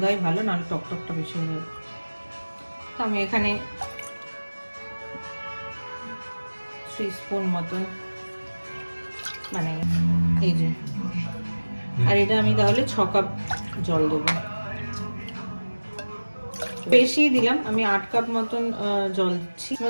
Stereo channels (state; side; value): inverted; both; correlation -1.00